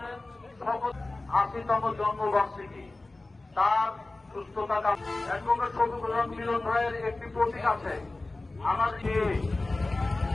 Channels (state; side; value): quieter; right; 3.1 dB